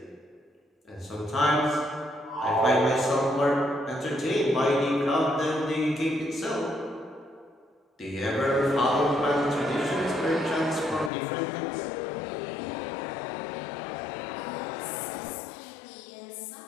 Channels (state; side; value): drops out; right; at 11.1 s